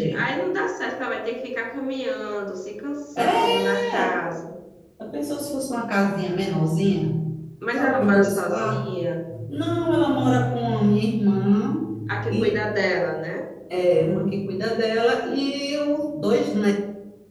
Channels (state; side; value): identical; both; correlation 1.00